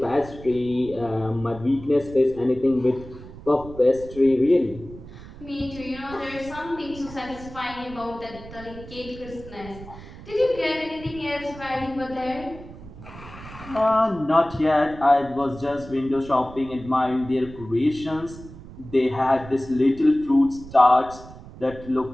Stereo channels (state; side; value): noise; right; rumble, 16 dB below the sound